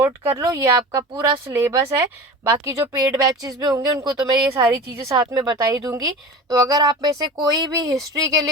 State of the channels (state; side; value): normal; both; correlation 0.34